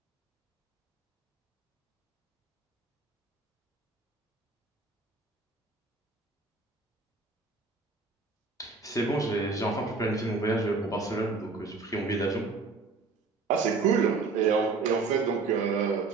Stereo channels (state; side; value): quieter; left; 4.2 dB